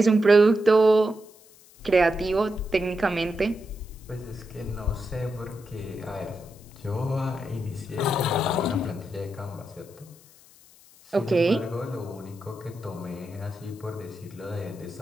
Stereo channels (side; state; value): left; noise; hiss, 25 dB below the sound